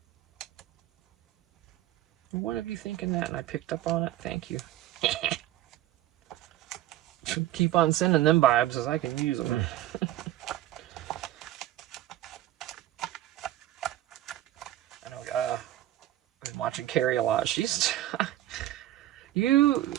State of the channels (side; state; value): left; quieter; 14.0 dB